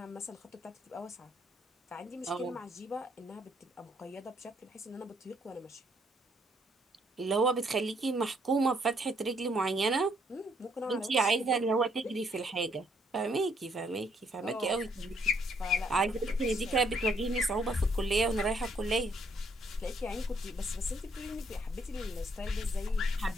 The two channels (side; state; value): both; normal; correlation 0.69